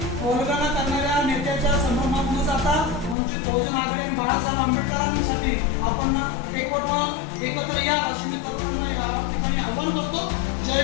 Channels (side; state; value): right; drops out; at 3.2 s